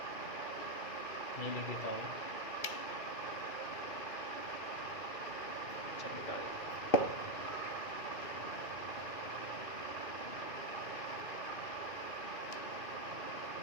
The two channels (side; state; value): right; late; 2.6 ms